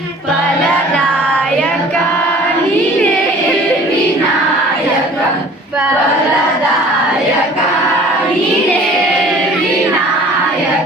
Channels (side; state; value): both; normal; correlation 0.48